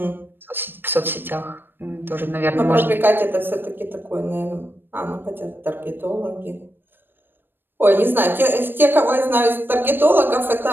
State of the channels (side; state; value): left; late; 0.096 ms